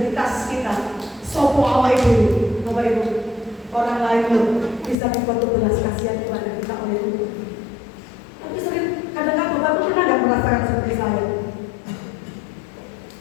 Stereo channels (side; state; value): right; drops out; at 5.0 s